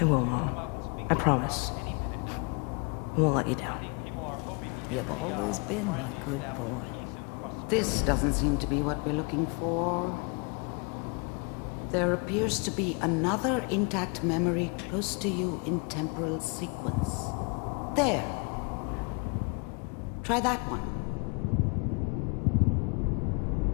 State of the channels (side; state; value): right; quieter; 33.7 dB